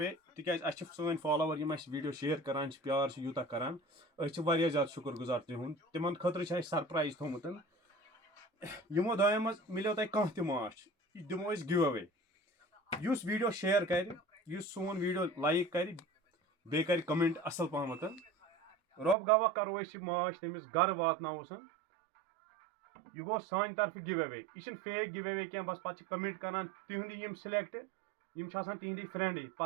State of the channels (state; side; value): drops out; left; at 19.2 s